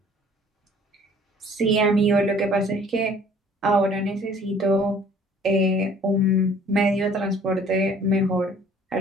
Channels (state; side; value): normal; both; correlation 0.54